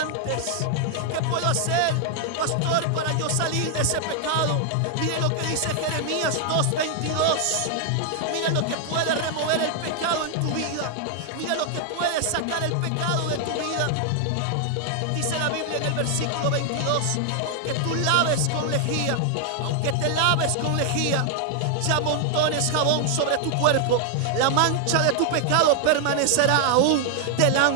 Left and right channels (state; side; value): different; both; correlation 0.00